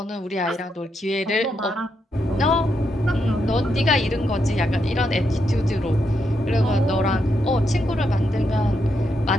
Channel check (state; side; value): normal; both; correlation 0.81